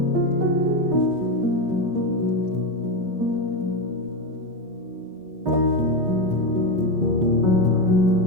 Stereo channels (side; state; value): left; late; 5.8 ms